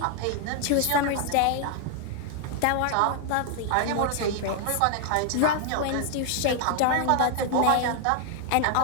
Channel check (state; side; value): different; both; correlation 0.00